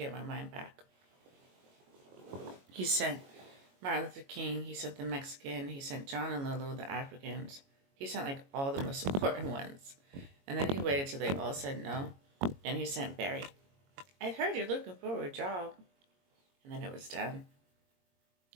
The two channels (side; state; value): left; late; 22 ms